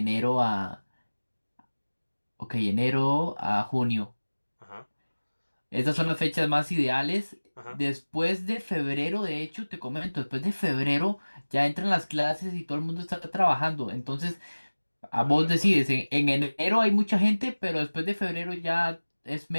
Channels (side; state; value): both; inverted; correlation -1.00